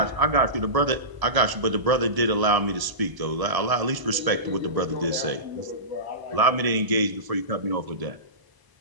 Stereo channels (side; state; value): left; late; 1.0 ms